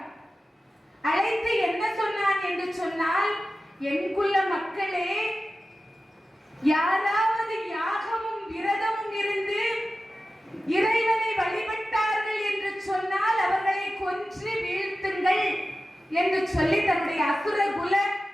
அழைத்து என்ன சொன்னான் என்று சொன்னால், என் குல மக்களே, யாராவது யாகமும் விரதமும் இருந்து இறைவனை வழிபட்டார்கள் என்று சொன்னால் அவர்களை கொன்று வீழ்த்துங்கள் என்று சொல்லி தன்னுடைய அசுரகுல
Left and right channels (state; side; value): normal; both; correlation 0.94